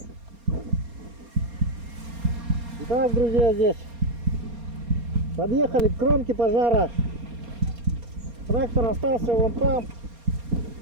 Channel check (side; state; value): left; late; 4.3 ms